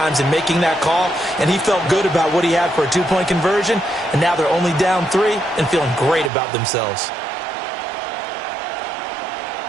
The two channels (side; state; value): left; drops out; at 6.3 s